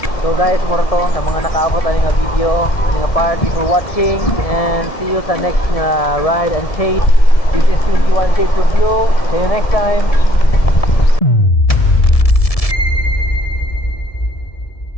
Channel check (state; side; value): late; right; 1.7 ms